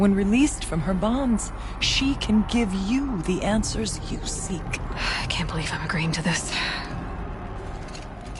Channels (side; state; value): both; identical; correlation 1.00